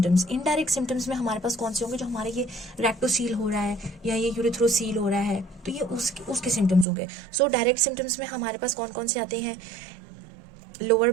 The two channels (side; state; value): left; drops out; at 6.9 s